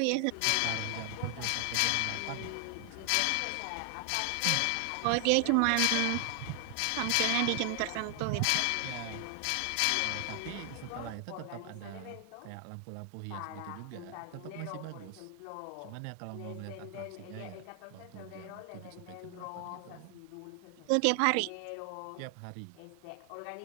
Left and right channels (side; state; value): both; different; correlation 0.00